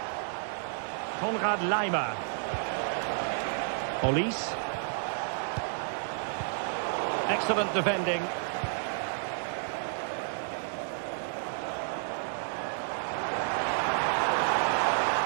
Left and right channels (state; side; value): silent; left; digital silence